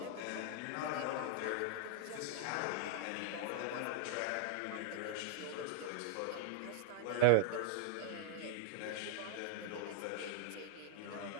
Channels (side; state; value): both; different; correlation 0.00